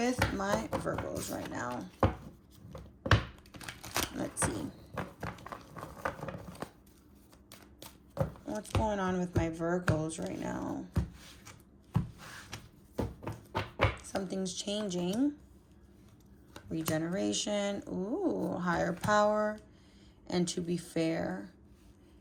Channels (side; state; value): both; identical; correlation 1.00